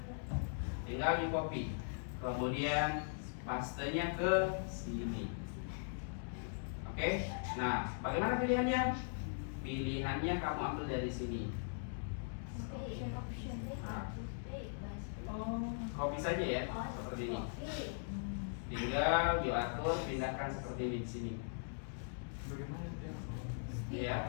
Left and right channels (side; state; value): right; silent; digital silence